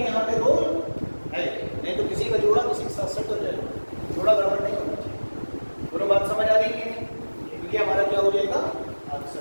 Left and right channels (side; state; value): both; inverted; correlation -1.00